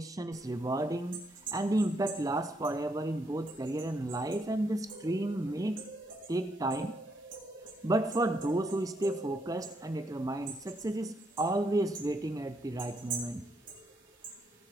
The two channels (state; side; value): normal; both; correlation 0.76